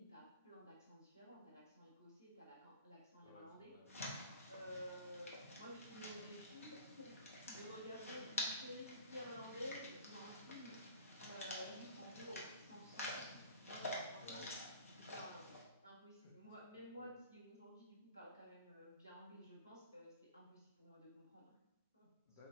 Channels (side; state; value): both; inverted; correlation -0.43